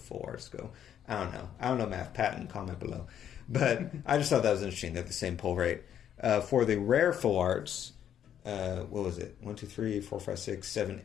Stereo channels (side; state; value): right; quieter; 9.7 dB